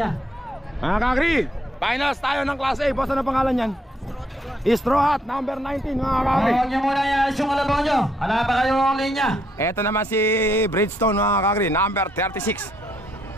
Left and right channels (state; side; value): normal; both; correlation 0.73